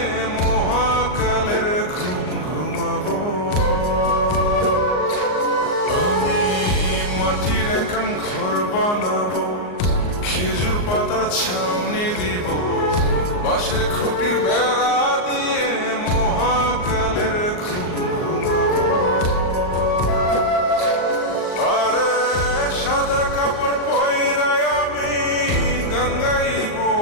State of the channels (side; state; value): right; late; 39 ms